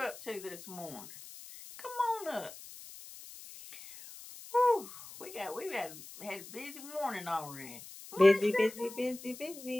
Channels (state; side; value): noise; left; hiss, 15 dB below the sound